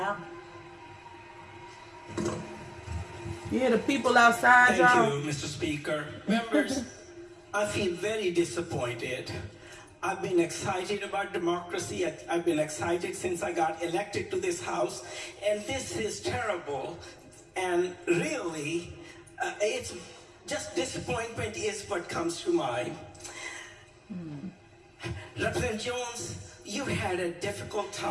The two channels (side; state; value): both; identical; correlation 1.00